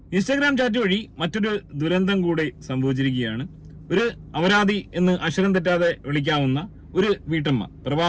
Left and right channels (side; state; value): both; identical; correlation 1.00